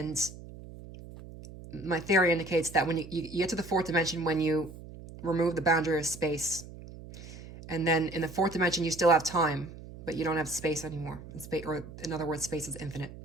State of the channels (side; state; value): right; noise; hum, 15 dB below the sound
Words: my theory indicates that when you get to the 4th dimension, when you remove the boundary of space, and then in the 4th dimension, you still have time, but you don't have space anymore. Or in other words, space is infinite.